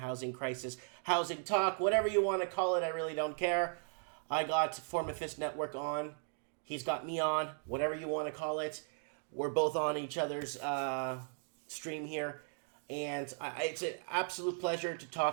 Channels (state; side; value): silent; left; 53 dB below the other